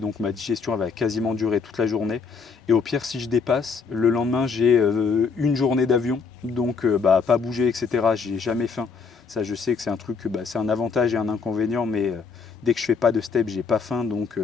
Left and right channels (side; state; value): right; quieter; 5.2 dB